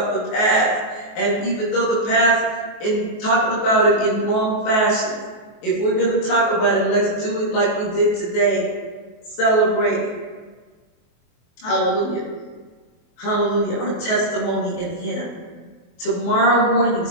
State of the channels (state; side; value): late; right; 23 ms